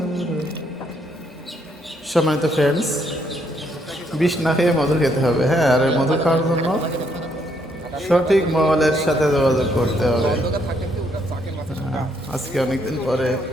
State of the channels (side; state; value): both; normal; correlation 0.72